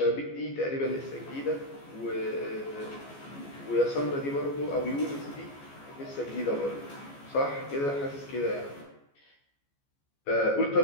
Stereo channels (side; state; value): right; late; 14 ms